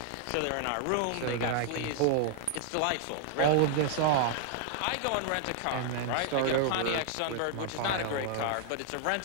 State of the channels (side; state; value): both; different; correlation 0.00